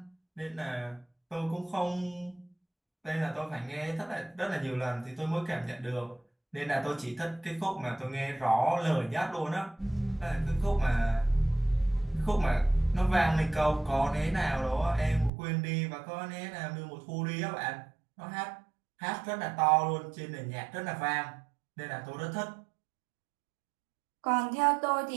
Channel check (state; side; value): drops out; left; at 15.3 s